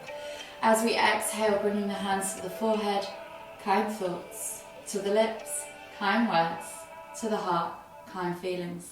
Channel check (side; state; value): both; identical; correlation 1.00